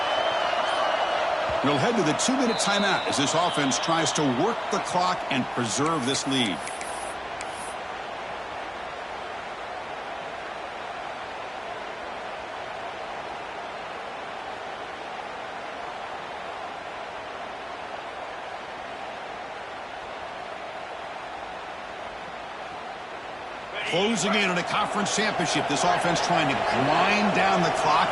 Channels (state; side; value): identical; both; correlation 1.00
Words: We'll head to the 2-minute timeout as this offense tries to work the clock and preserve this lead. Closing in on a conference championship, this offense trying to grind down the clock